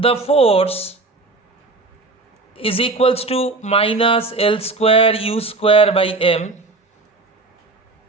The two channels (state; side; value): quieter; left; 3.4 dB